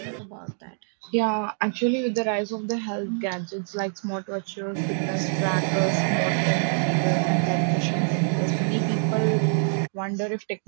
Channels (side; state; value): left; silent; digital silence